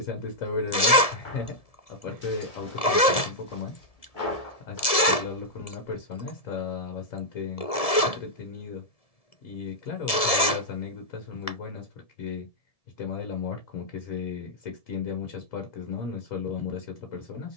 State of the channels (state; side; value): late; right; 1.7 ms